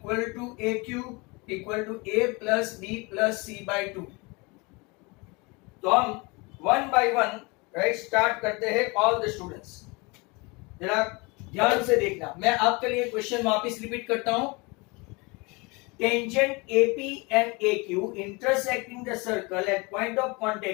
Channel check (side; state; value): right; quieter; 27.0 dB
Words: to AQ equal to A plus B plus C by 2। तो हम 1 by 1, right, start करते हैं all the students. जरा ध्यान से देखना, मैं आपके लिए क्वेश्चन वापस रिपीट करता हूं। Tangent AP and AQ intersecting the circle at point of